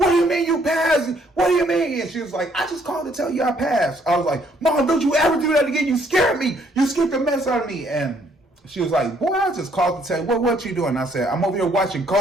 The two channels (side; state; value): both; normal; correlation 0.66